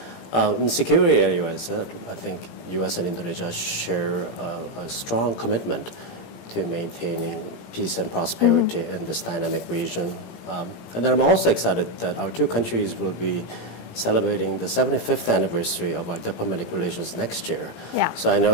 In security areas, I think U.S. and Indonesia share a strong commitment to maintaining peace and prosperity in this dynamic region. And then I'm also excited that our two countries will be celebrating the 75th anniversary of our diplomatic relations next year. So I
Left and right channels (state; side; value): late; right; 17 ms